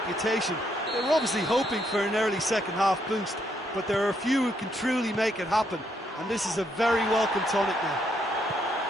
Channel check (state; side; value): normal; both; correlation 0.74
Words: They were obviously hoping for an early second-half boost, but there are a few who can truly make it happen, and this is a very welcome tonic now.